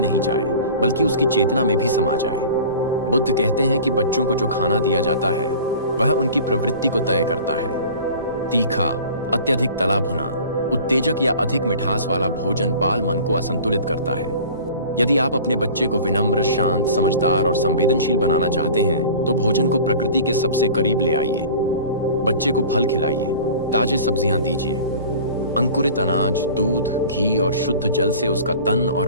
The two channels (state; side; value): inverted; both; correlation -0.41